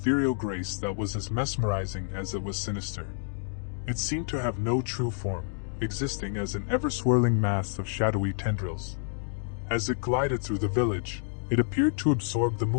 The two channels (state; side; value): silent; right; digital silence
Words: grace that was as mesmerizing as it was sinister. It seemed to have no true form, existing as an ever-swirling mass of shadowy tendrils. As it glided through the village, it appeared to absorb the